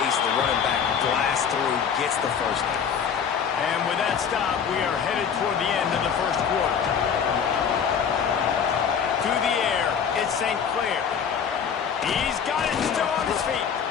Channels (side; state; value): right; quieter; 7.2 dB